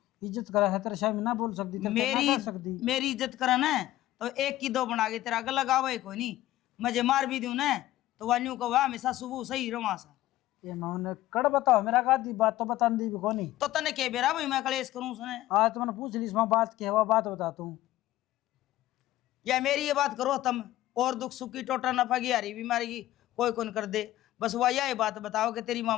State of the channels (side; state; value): right; quieter; 15.3 dB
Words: इज्जत करा है, तेरे शायद ना बोल सकती, तेरे ना कर सकती। मेरी इज्जत करा ना तो एक की दो बना के तेरा गला लगावा कोई नहीं। मुझे मार भी दूं ना तो वान्यू को वह हमेशा सुबह सही रवा सा। ये मैं कड़ बताओ, मेरा का दी बात तो बता दी भी कोनी। तो तने के बेरा भाई मैं कलेश करूं उसने। आज तो मैंने पूछ ली इसमें बात की है, वह बात बता तू। या मेरी ये बात करो तुम, और दुख सुख की टोटा नफा की हारी बीमारी की कोई कौन कर दे। बस वह यही बात बताओ कि तेरी माँ